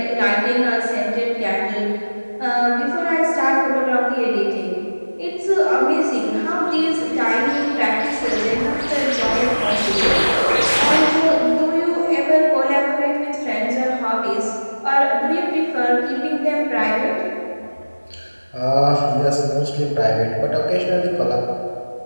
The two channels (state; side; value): inverted; both; correlation -1.00